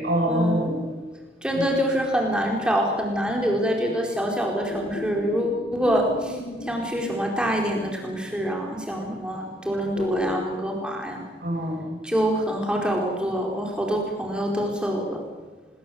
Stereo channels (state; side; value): normal; both; correlation 0.67